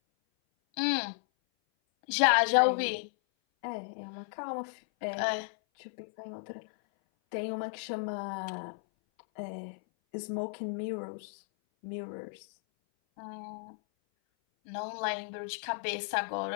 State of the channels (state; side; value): silent; right; 55 dB below the other